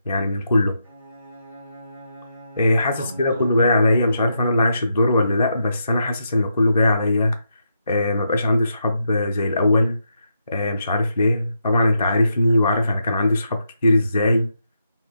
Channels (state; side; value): inverted; both; correlation -0.82